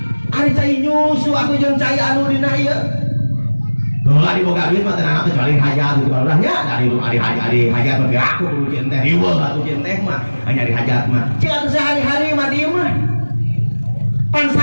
ari cai nyusu aku jeung cai anu dina ieu heula di boga duit mah teh anak kecuali hajat di palurah nya dari hajat mah aku kudu cin teh riweuh atuh cin teh mah hanya di hajat mah cing atuh sehari-hari mah dieu mah pan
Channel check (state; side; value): inverted; both; correlation -1.00